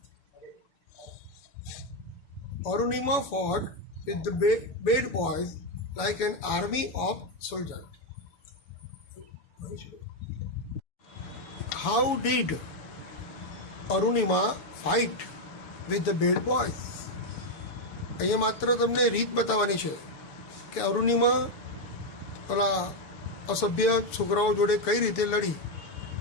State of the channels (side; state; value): right; late; 7.0 ms